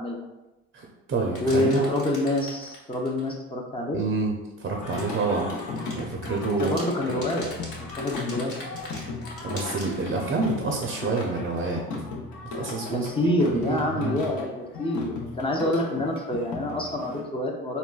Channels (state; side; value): normal; both; correlation 0.36